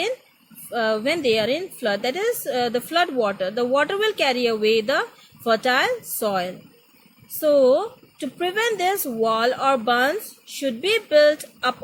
flood. That is the flood water. The water will carry away the fertile soil. So to prevent this, wall or bunds should be built up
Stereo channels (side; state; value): both; identical; correlation 1.00